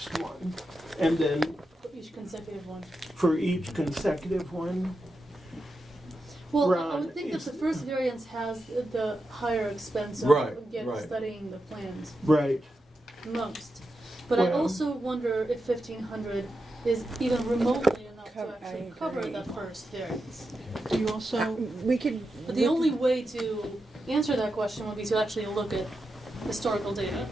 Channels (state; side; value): normal; both; correlation 0.88